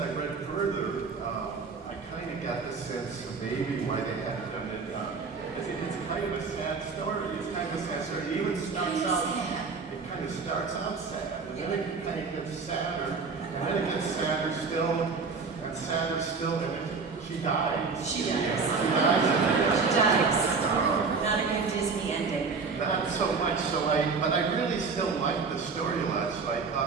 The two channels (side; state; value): left; quieter; 4.8 dB